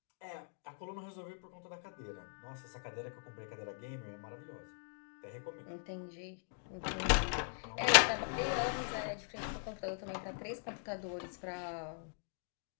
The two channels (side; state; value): right; silent; digital silence